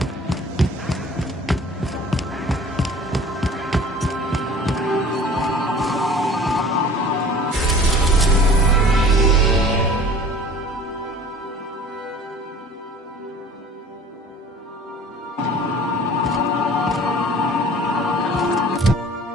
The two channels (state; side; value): normal; both; correlation 0.46